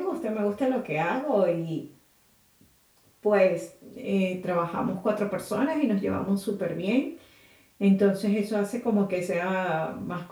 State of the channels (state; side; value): identical; both; correlation 1.00